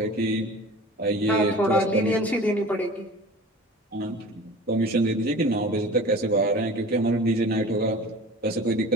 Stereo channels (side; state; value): both; normal; correlation 0.40